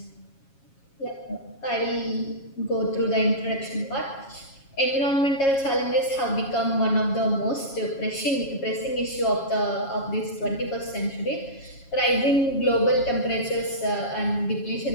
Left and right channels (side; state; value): right; late; 7.3 ms